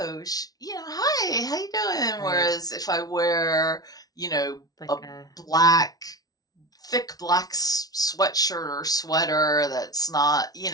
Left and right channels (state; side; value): late; right; 0.18 ms